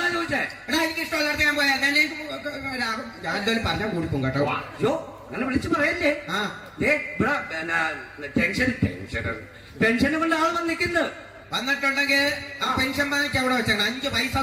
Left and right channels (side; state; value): both; identical; correlation 1.00